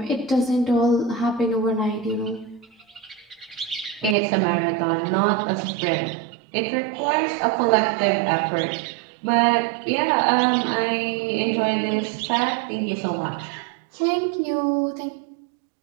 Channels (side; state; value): left; drops out; at 4.2 s